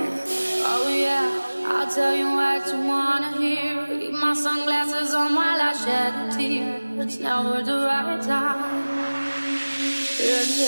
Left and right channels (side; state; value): both; inverted; correlation -1.00